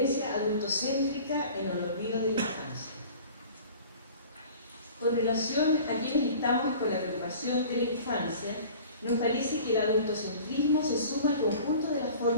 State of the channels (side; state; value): both; inverted; correlation -0.44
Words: adultocéntrica en el olvido de la infancia. Con relación a quienes estamos con la preocupación de la infancia, nos parece que el adultocentrismo se suma al conjunto de las